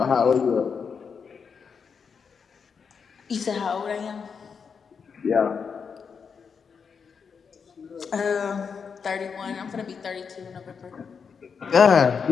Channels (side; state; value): right; quieter; 6.1 dB